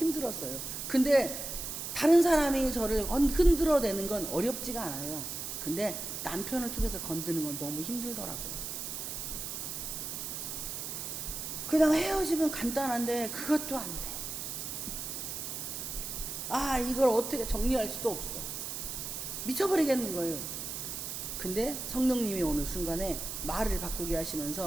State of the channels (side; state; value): right; noise; hiss, 5 dB below the sound